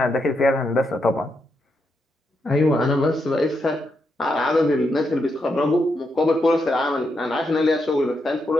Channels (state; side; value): normal; both; correlation 0.82